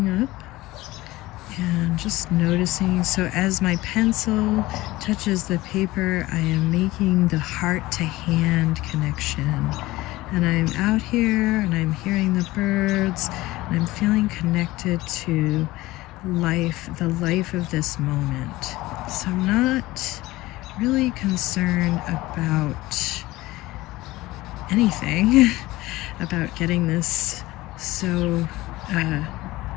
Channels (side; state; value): right; quieter; 18.7 dB